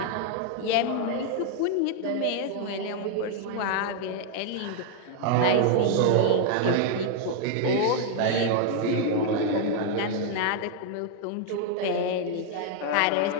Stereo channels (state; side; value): different; both; correlation 0.00